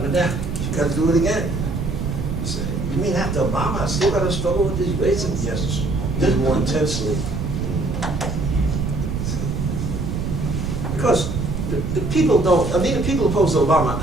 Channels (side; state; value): right; noise; rumble, 3 dB below the sound